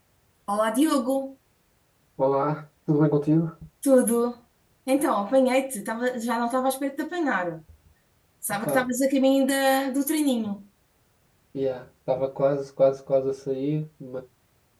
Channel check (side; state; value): both; identical; correlation 1.00